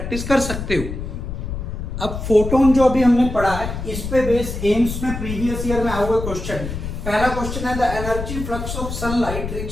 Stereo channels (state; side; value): noise; left; rumble, 6 dB below the sound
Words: कर सकते हो। अब फोटोन जो अभी हमने पढ़ा है, इस पे बेस एम्स में प्रीवियस ईयर में आया हुआ क्वेश्चन। पहला क्वेश्चन है the energy flux of sunlight